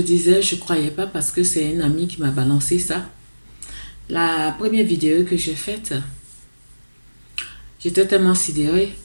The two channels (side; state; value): both; inverted; correlation -1.00